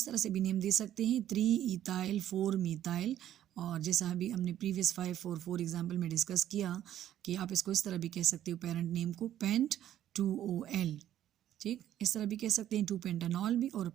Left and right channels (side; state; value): left; quieter; 11.7 dB